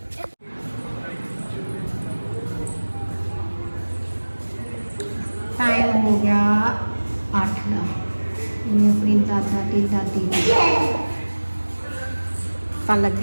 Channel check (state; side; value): inverted; both; correlation -1.00